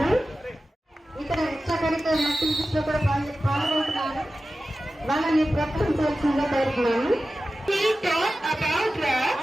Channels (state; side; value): normal; both; correlation 0.94